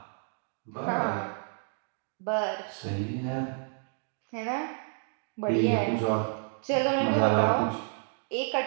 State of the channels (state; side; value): silent; left; 58 dB below the other